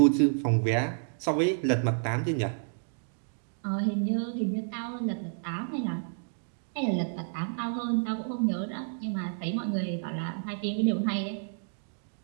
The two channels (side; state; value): left; silent; digital silence